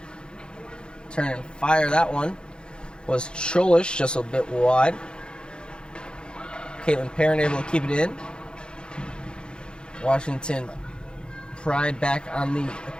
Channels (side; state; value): right; late; 0.051 ms